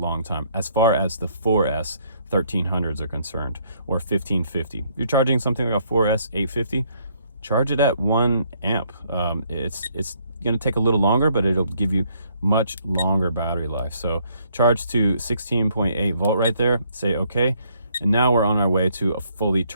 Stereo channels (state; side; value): inverted; both; correlation -0.68